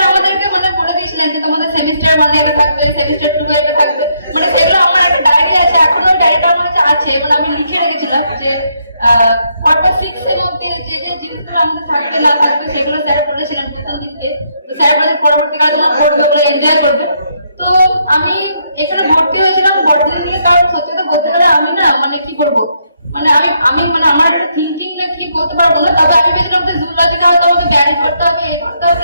আমাদেরকে মানে বলে দিয়েছিলেন যে তোমাদের সেমিস্টার 1 এটা থাকবে, সেমিস্টার 2 এটা থাকবে, মানে সেগুলো আমার একটা ডায়েরি আছে, এখনো ওই ডায়েরিটা আমার কাছে আছে, মানে আমি লিখে রেখেছিলাম যে পরপর 6 এর মধ্যে যে যে জিনিসগুলো আমাদের থাকবে না থাকবে সেগুলো স্যার বলেছিলেন প্রথম দিনকে। তো স্যার বলেছেন পরবর্তীকালে তোমরা পড়বে, ওগুলো এনজয় করবে। তো আমি এখানে ভর্তি হয়েছিলাম বটনি নিয়ে, কারণ সত্যি কথা বলতে গেলে আমি না মানে কি করবো, মানে আমি মানে আমার একটা থিঙ্কিং না কি বলতে পারবো না, তবে আমি ভেবেছিলাম যে জুলজিতে হয়তো আমাকে ব্যান করতে হবে, এই করতে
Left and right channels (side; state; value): both; inverted; correlation -0.75